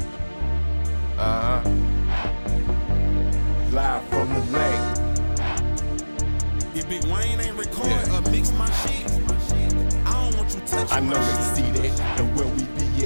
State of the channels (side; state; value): both; inverted; correlation -1.00